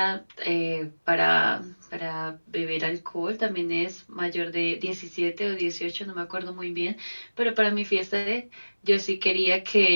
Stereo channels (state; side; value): inverted; both; correlation -1.00